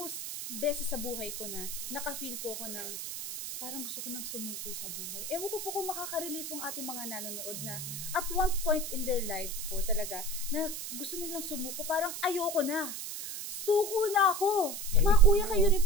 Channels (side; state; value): right; noise; hiss, 6 dB below the sound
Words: beses sa buhay ko na naka-feel po ko ng parang gusto ko nang sumuko sa buhay. Ewan ko po kung makaka-relate pong ating mga nanonood na at one point in their life po talaga na gusto nilang sumuko, parang ayoko na. Suko na ako. Mga kuya, kayo rin